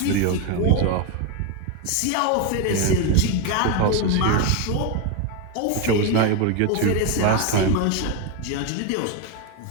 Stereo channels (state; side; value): different; both; correlation 0.02